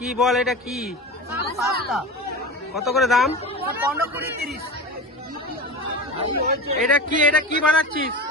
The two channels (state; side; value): normal; both; correlation 0.28